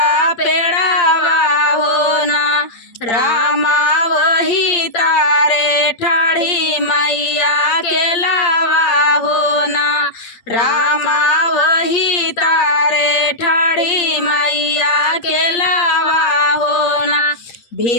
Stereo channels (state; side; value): late; right; 8.3 ms